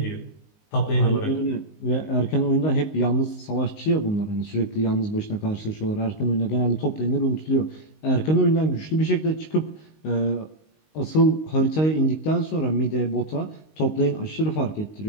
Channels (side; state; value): right; late; 19 ms